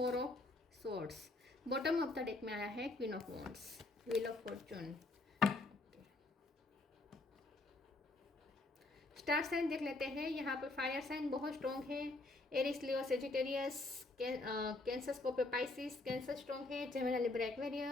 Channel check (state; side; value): quieter; right; 3.0 dB